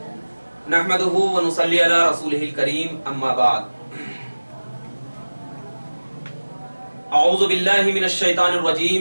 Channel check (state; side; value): inverted; both; correlation -1.00